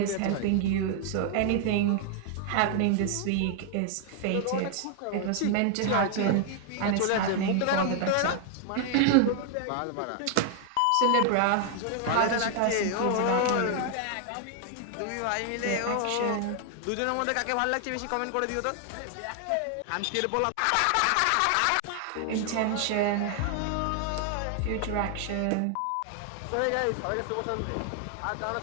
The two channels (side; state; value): both; different; correlation 0.00